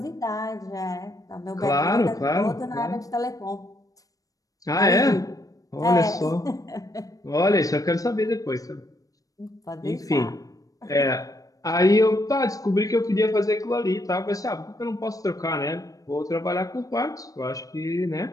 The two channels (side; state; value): right; late; 0.17 ms